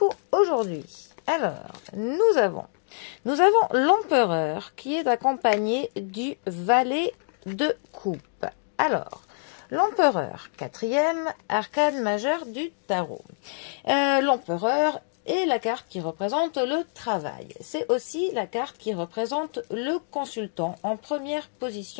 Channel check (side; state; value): right; silent; digital silence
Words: aujourd'hui. Alors, nous avons l'empereur qui est accompagné du valet de coupe. Alors, l'empereur, quatrième arcane majeur du tarot. L'empereur est la carte qui représente le travail. C'est aussi la carte qui représente le consultant en première